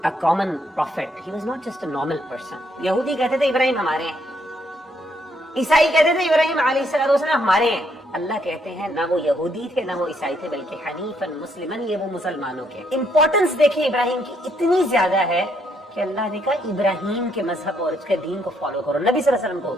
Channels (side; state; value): both; normal; correlation 0.72